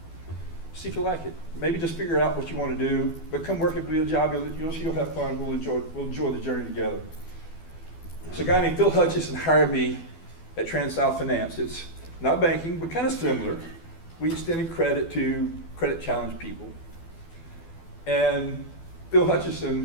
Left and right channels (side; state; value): right; late; 12 ms